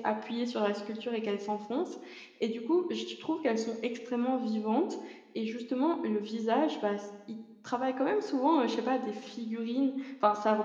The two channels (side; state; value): both; identical; correlation 1.00